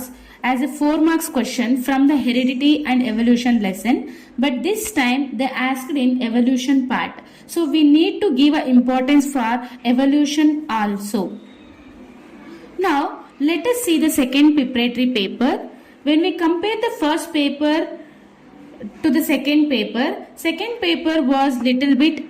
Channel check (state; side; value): identical; both; correlation 1.00